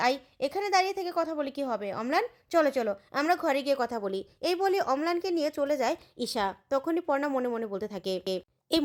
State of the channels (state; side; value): identical; both; correlation 1.00